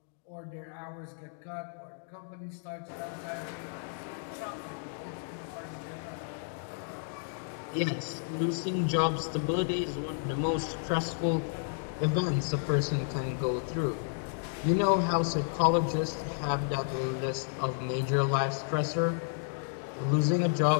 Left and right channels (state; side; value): silent; right; digital silence